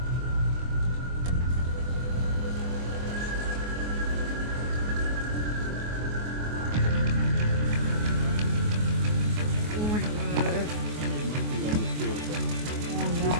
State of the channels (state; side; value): late; left; 24 ms